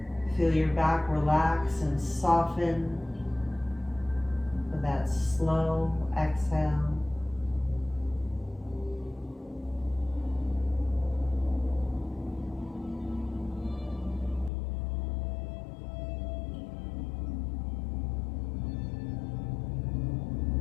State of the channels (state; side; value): drops out; right; at 14.5 s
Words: Feel your back relax and soften with that slow exhale.